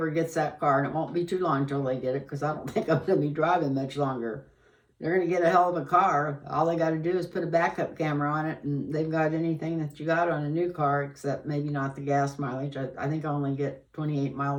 gets that car, and it won't be too long till they get it, because I don't think I'm going to be driving much longer. They're going to get a hell of a car. All they got to do is put a backup camera on it, and they've got anything that you got on a new car, except maybe not the gas mileage. I think I only get 28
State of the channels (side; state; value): both; identical; correlation 1.00